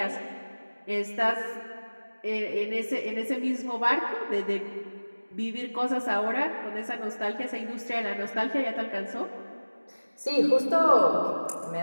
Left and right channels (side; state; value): both; inverted; correlation -1.00